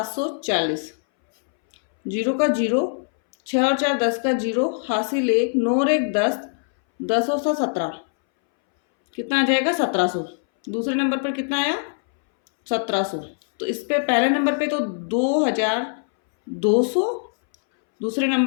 0 का 0, 6 और 4 10 का 0 हासिल 1, 9 और 1 10, 10 और 7 17, कितना आ जाएगा 1700। दूसरे नंबर पर कितना आया, 1700। तो इस पे पहले नंबर पे तो 2200, दूसरे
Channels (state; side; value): silent; right; 63 dB below the other